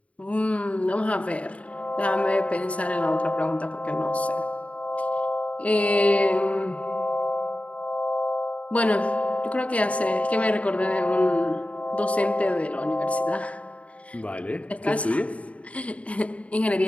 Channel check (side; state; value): right; late; 0.065 ms